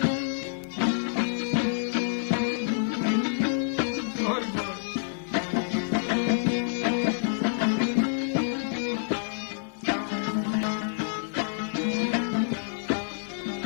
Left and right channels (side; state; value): right; silent; 60 dB below the other